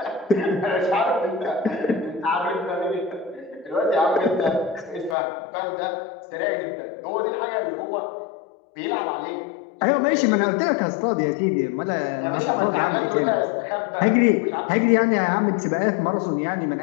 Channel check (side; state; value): right; drops out; at 5.2 s